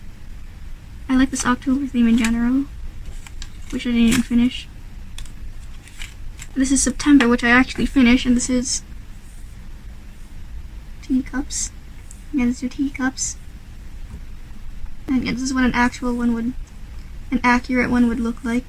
I like this October theme in general, which I didn't even finish. This is September, which I actually finished, and this is teacups. Yeah, these are teacups. And yeah, this is what an accurate one would look like.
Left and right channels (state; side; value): identical; both; correlation 1.00